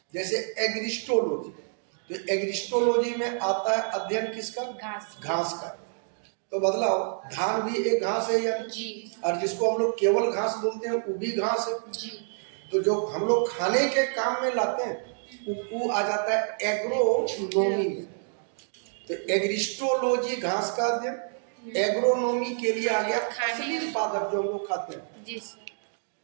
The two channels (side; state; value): left; silent; digital silence